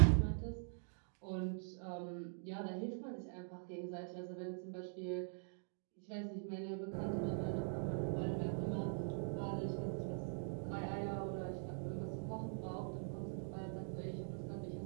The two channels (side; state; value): left; silent; digital silence